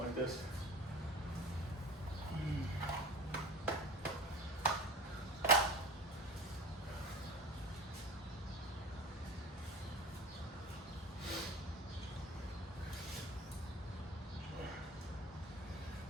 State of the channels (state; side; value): normal; both; correlation 0.36